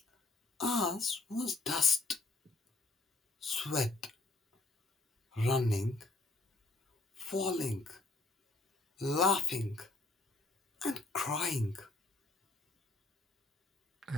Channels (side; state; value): right; quieter; 3.1 dB